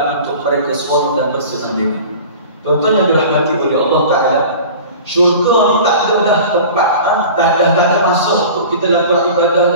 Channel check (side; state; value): both; inverted; correlation -0.39